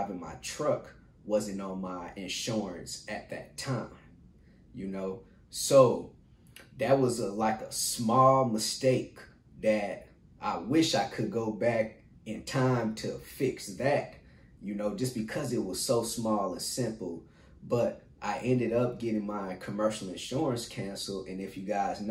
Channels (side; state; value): both; identical; correlation 1.00